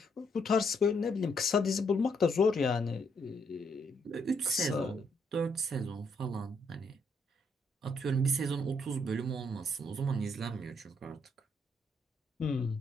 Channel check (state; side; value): normal; both; correlation 0.73